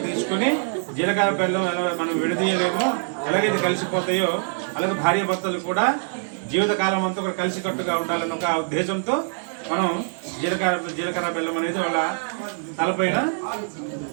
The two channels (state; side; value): silent; left; 63 dB below the other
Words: తీసుకొని జీలకర్ర బెల్లం ఎలా మనం విడదీయలేమో, ఎలాగైతే కలిసిపోతాయో అలాగే భార్యాభర్తలు కూడా జీవితకాలం అంతా కూడా కలిసికట్టుగా ఉండాలని ఒక ఉద్దేశంతో మనం జీలకర్ర బెల్లం అనేది వాళ్ళ తలపైన